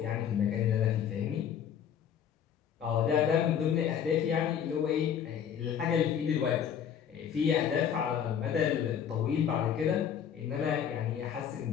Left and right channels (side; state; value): right; quieter; 8.6 dB